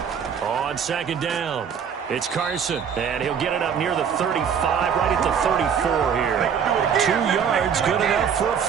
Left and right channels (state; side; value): quieter; left; 7.4 dB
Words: On second down, it's Carson, and he'll get it up near the 35, right at the 34 here. 2 yards, good enough for a